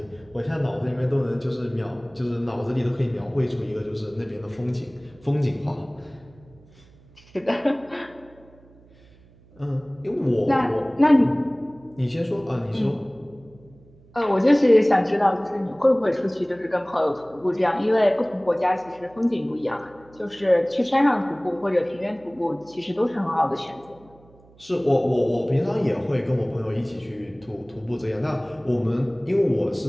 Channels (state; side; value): noise; right; hum, 27 dB below the sound